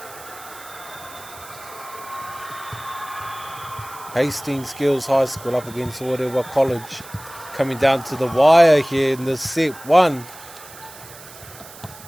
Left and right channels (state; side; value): noise; right; hiss, 18 dB below the sound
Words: Hastings Girls High School up against Orewa College. Coming down to the wire here in the set one.